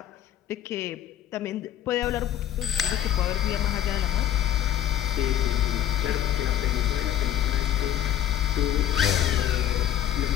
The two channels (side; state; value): right; quieter; 11.4 dB